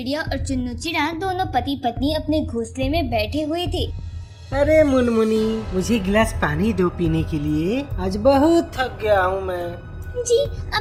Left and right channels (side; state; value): both; identical; correlation 1.00